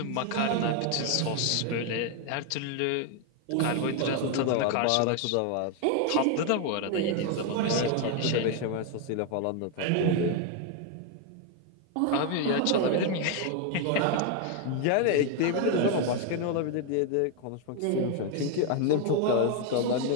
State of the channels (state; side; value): different; both; correlation 0.01